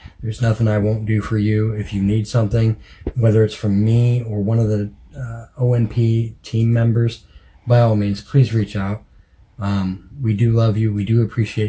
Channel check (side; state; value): both; identical; correlation 1.00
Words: There's nothing I won't do for you. If you need something, whether it's from me or one of the ONP team members, by all means, please reach out. We do love you. We do